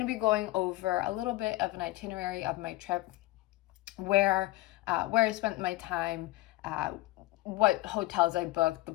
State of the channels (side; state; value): right; quieter; 18.0 dB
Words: be going over a little bit of an itinerary of my trip, where I spent my time, what hotels I booked, the